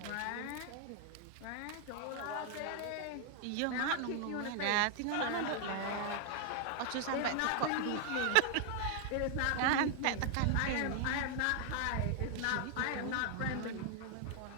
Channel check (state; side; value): different; both; correlation 0.00